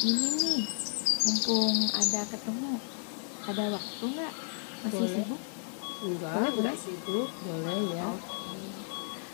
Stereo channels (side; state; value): right; silent; digital silence